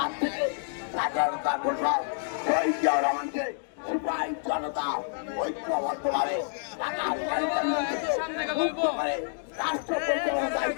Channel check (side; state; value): right; silent; digital silence